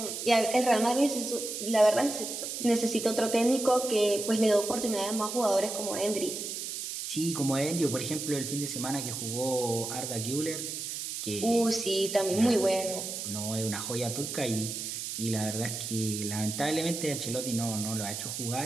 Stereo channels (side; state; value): right; noise; hiss, 5 dB below the sound